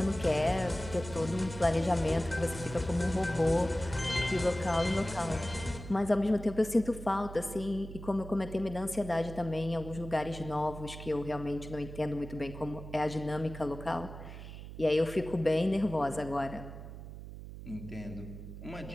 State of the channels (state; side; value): noise; right; hum, 11 dB below the sound